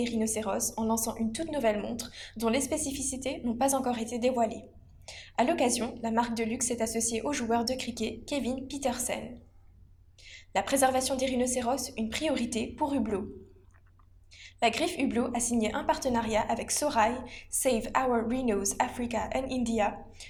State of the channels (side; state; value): both; identical; correlation 1.00